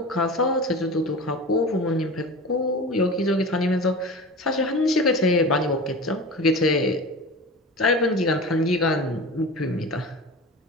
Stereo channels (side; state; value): both; normal; correlation 0.33